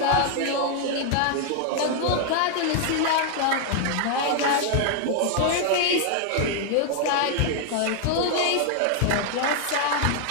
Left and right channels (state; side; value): different; both; correlation 0.00